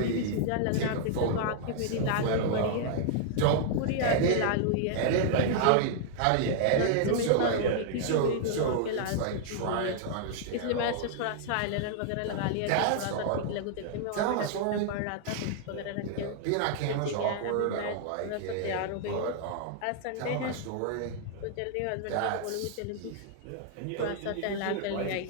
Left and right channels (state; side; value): different; both; correlation -0.01